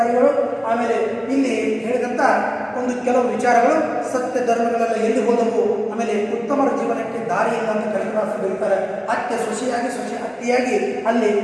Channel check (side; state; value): both; identical; correlation 1.00